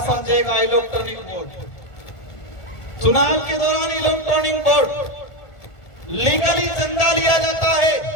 समझेगा इलेक्ट्रॉनिक बोर्ड? चुनाव के दौरान इलेक्ट्रॉनिक बोर्ड लीगली चंदा लिया जाता है।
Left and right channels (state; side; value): late; right; 1.4 ms